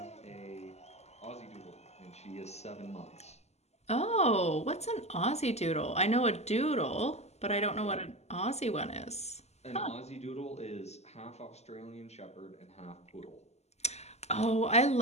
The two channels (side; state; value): right; late; 0.32 ms